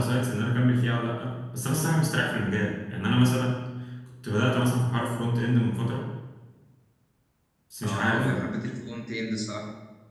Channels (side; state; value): both; identical; correlation 1.00